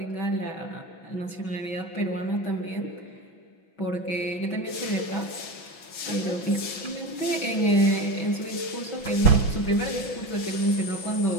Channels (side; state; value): right; late; 6.0 ms